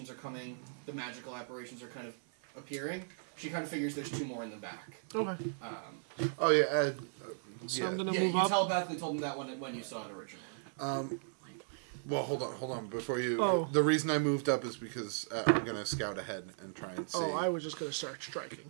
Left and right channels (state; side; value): silent; left; 53 dB below the other